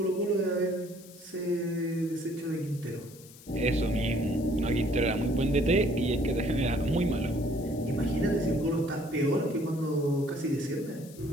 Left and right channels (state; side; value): noise; left; hiss, 21 dB below the sound